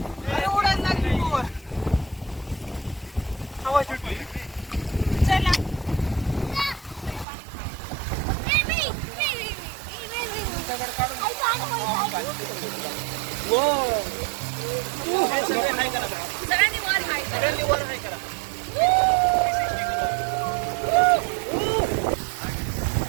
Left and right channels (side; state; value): left; drops out; at 7.2 s